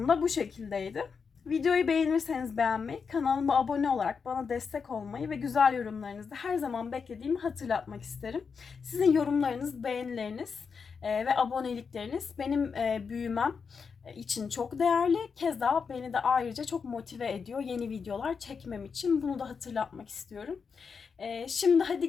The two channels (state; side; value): quieter; right; 5.7 dB